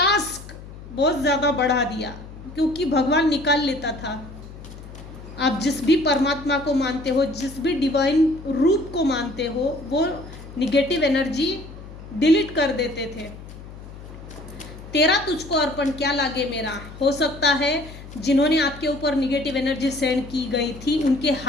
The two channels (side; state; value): left; noise; hum, 15 dB below the sound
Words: बहुत ज़्यादा बढ़ा दिया, क्योंकि भगवान निकाल लेता था। आप जिस भी परमात्मा को मानते हो, जिस भी डिवाइन रूप को मानते हो, वो निगेटिव एनर्जी डिलीट कर देते थे। तेरा तुझको अर्पण क्या लागे मेरा। हो सकता है जिन्होंने आपके ऊपर निगेटिव एनर्जी सेंड की गई थी उनके